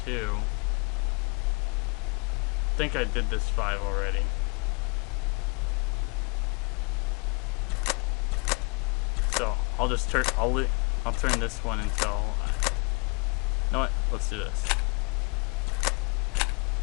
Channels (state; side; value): quieter; right; 31.7 dB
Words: I think I did this 5 already. So I'll just turn. I'll turn this one until. You know what? Let's do this.